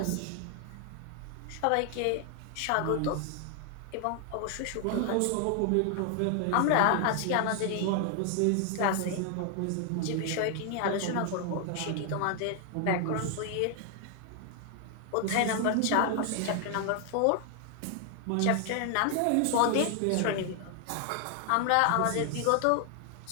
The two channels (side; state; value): both; different; correlation 0.00